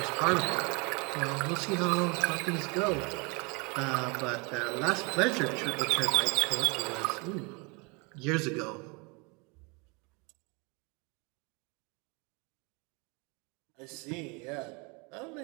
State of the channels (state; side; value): quieter; left; 30.2 dB